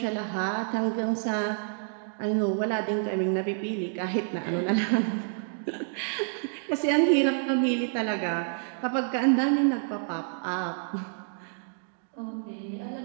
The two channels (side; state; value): left; silent; digital silence